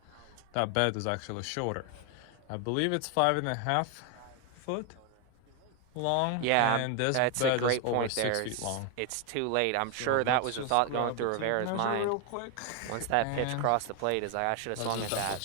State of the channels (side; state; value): both; different; correlation 0.01